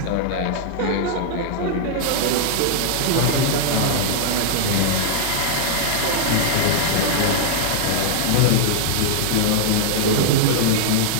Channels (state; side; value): different; both; correlation -0.01